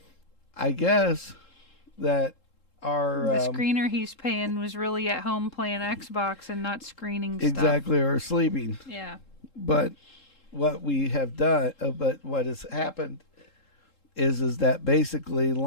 I guess that our The screener he's paying was really at home playing Xbox and not screening stuff. exactly or sleeping. Yeah. But what we have done, but what has happened is that basically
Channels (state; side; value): late; right; 3.7 ms